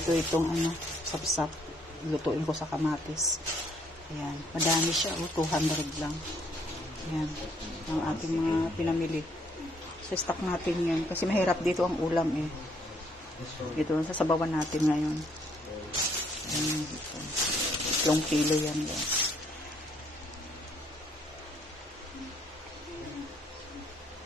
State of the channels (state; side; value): normal; both; correlation 0.67